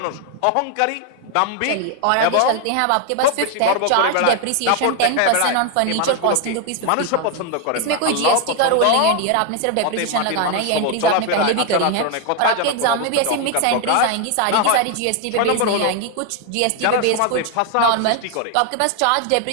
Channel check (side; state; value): both; different; correlation 0.01